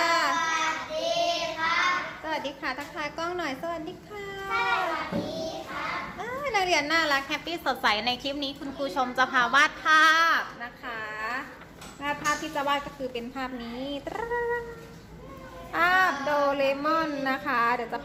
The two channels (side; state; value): both; identical; correlation 1.00